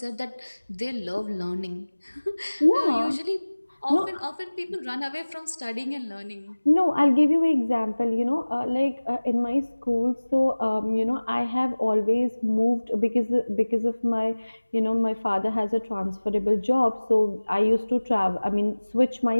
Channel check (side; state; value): both; inverted; correlation -1.00